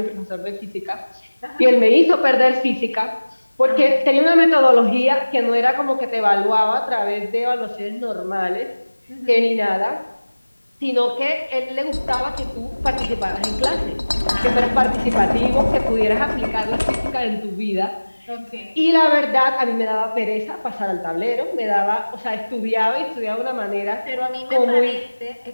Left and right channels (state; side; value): inverted; both; correlation -1.00